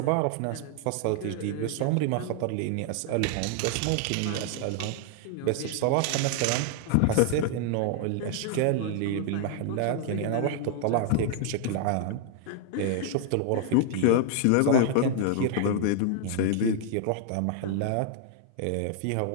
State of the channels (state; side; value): different; both; correlation 0.00